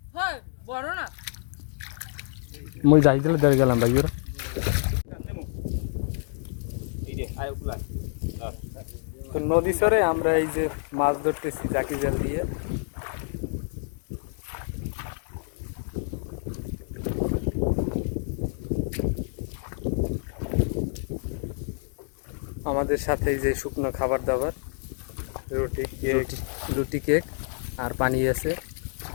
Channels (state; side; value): silent; right; digital silence